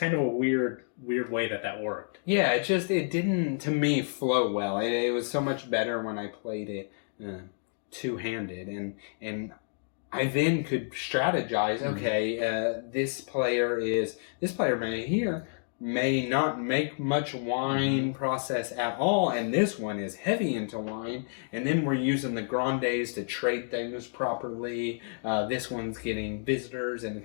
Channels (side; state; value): right; silent; digital silence